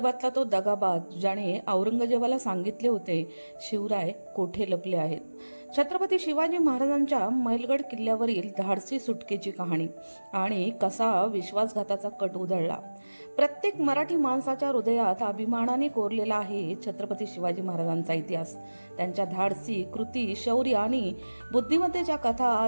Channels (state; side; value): inverted; both; correlation -1.00